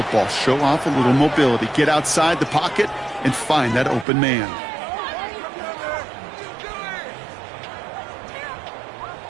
Show off a little mobility. Get outside the pocket and find that open man.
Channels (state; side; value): drops out; left; at 4.0 s